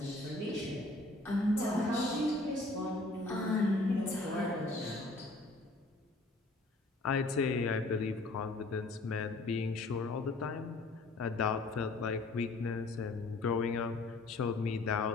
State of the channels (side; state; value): right; quieter; 3.0 dB